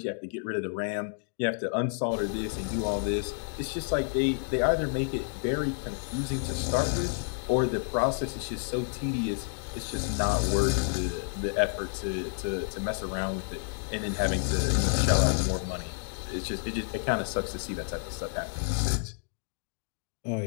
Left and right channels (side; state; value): right; silent; digital silence